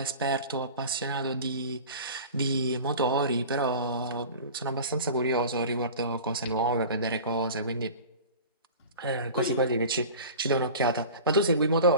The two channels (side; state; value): both; inverted; correlation -0.37